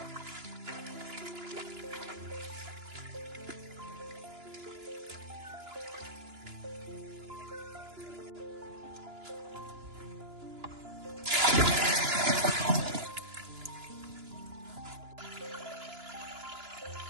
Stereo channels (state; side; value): late; left; 2.9 ms